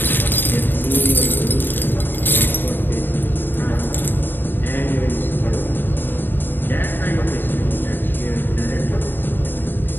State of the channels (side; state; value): right; late; 0.094 ms